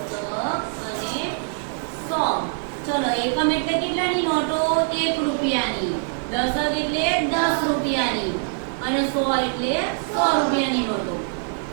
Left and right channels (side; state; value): left; silent; digital silence